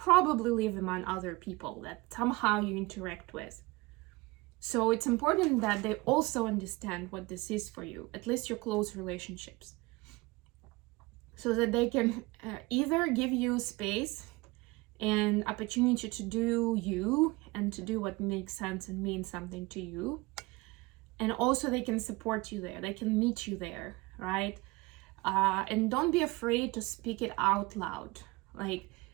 live among other people that somehow you interact with. So it's important that they also understand what this is for you, at least your close relationships, so that they can either give you space and opportunity to do you and to do what makes sense and means something to you. And also they can support you there, they can meet you there, right? And don't be afraid to speak it out loud. Like,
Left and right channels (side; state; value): left; quieter; 22.9 dB